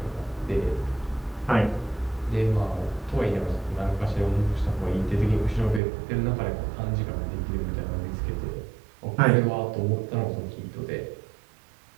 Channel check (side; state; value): left; drops out; at 5.8 s